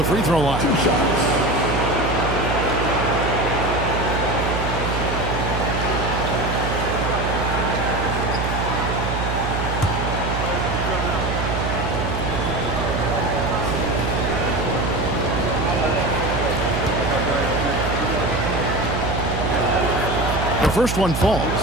free throw line. 2 shots. The first one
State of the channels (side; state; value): right; noise; hum, 3 dB below the sound